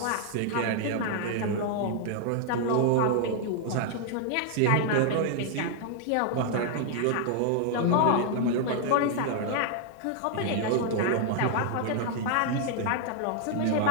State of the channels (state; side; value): different; both; correlation 0.00